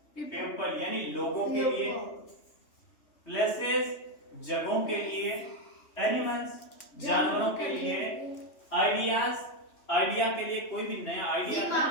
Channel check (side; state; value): right; late; 3.2 ms